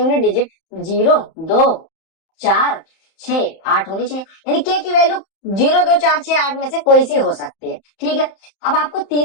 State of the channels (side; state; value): right; late; 31 ms